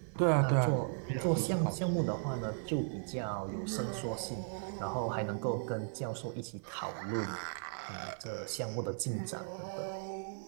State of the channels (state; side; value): silent; left; 53 dB below the other